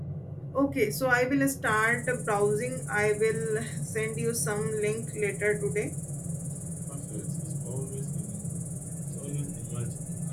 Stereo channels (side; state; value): both; identical; correlation 1.00